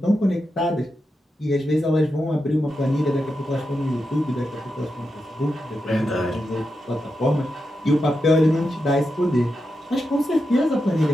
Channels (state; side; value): normal; both; correlation 0.88